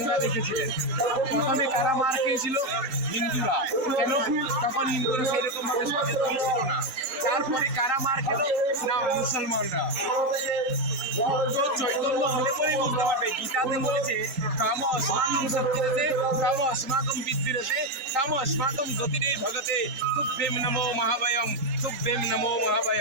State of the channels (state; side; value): late; left; 3.8 ms